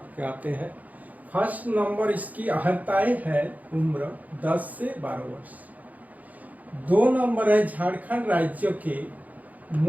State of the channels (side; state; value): left; late; 0.078 ms